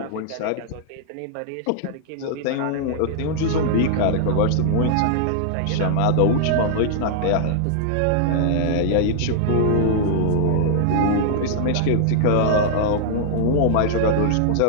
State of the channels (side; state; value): both; different; correlation -0.01